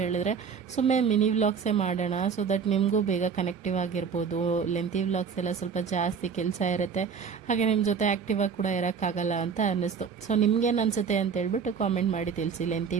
ಹೇಳಿದ್ರೆ, ಸುಮ್ಮನೆ ಮಿನಿ ವ್ಲಾಗ್ಸೇ ಮಾಡೋಣ, ಸೊ ದಟ್ ನಿಮಗೂ ಬೇಗ ಕನೆಕ್ಟಿವ್ ಆಗಿರ್ಬೋದು. ಲೆಂತಿ ವ್ಲಾಗ್ಸ್ ಎಲ್ಲ ಸ್ವಲ್ಪ ಜಾಸ್ತಿ ಕೆಲಸ ಇರುತ್ತೆ, ಹಾಗೆ ನಿಮ್ಮ ಜೊತೆ ಆ್ಯಕ್ಟಿವಾಗಿ ಕೂಡ ಇರೋಕ್ಕಾಗಲ್ಲ ಅಂತ ಅನ್ನಿಸ್ತು. ಸೊ ನಿಮ್ಗೇನು ಅನಿಸುತ್ತೆ ಅಂತ ಹೇಳ್ಬಿಟ್ಟು ಕಾಮೆಂಟ್ ಮಾಡಿ ತಿಳಿಸಿ. ಲೆಂತಿ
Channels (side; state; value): left; quieter; 6.3 dB